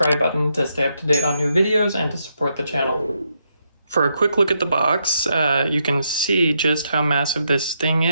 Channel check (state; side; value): inverted; both; correlation -0.80